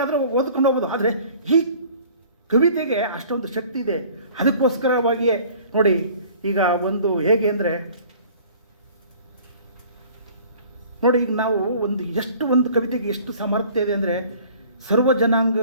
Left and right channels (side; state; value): both; inverted; correlation -0.49